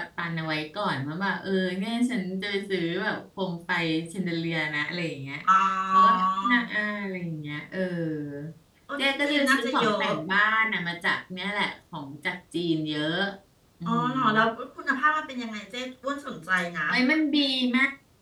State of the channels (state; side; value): identical; both; correlation 1.00